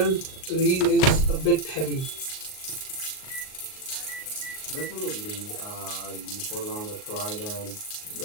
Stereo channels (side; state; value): right; late; 38 ms